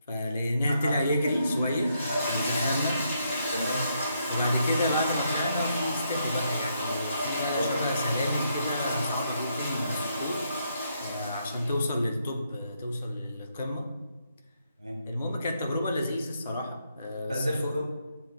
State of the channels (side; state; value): both; inverted; correlation -0.77